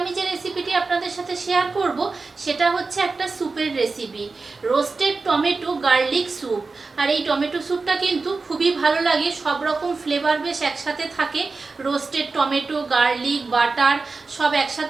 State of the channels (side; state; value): left; quieter; 4.0 dB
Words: যে রেসিপিটি আপনাদের সাথে শেয়ার করব সেটা হচ্ছে একটা স্যুপের recipe, roasted tomato garlic soup. আর এই টমেটো স্যুপটা কিন্তু খুবই ভালো লাগে, সব রকম ফ্লেভার বেশ একসাথে থাকে। রোস্টেড টমেটো, গার্লিক, বাটার সব